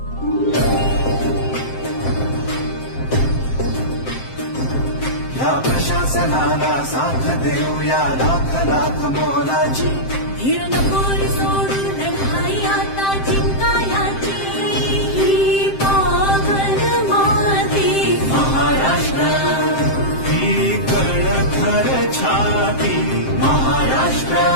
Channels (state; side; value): late; right; 7.6 ms